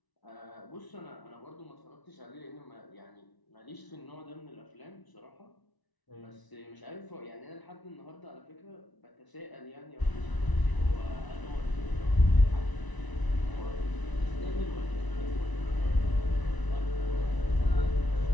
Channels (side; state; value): right; late; 1.0 ms